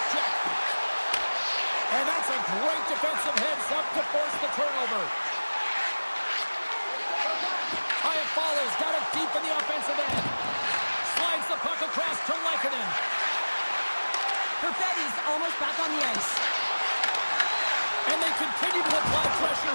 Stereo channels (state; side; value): inverted; both; correlation -1.00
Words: check. And that's a great defensive heads-up to force the turnover. Iafallo's got it deep in the offensive end. Slides the puck across to Lehkonen. Perfetti's almost back on the ice. And they continue to apply